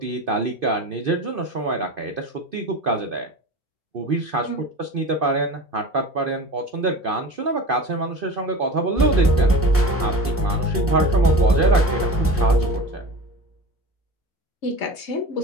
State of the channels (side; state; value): both; normal; correlation 0.33